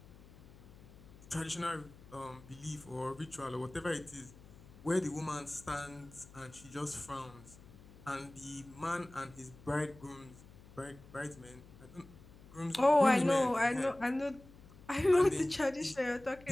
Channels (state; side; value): noise; left; hum, 21 dB below the sound